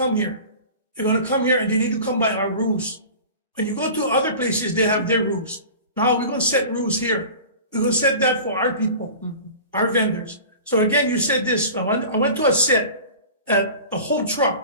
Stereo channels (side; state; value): both; inverted; correlation -0.38